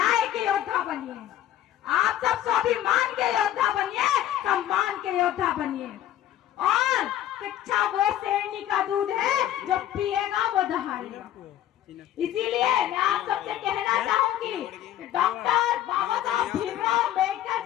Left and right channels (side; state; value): right; quieter; 12.2 dB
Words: के योद्धा बनिए, आप सब स्वाभिमान के योद्धा बनिए, सम्मान के योद्धा बनिए। और शिक्षा वो शेरनी का दूध है जो पिएगा वो दहाड़ेगा। इसीलिए मैं आप सबसे कहना चाहूंगी कि डॉक्टर बाबा साहब भीमराव अम्बेडकर